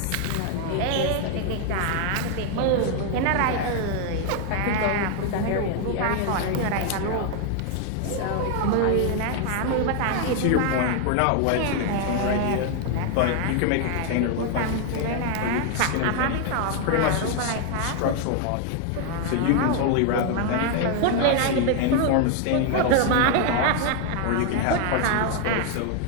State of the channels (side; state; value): both; different; correlation 0.00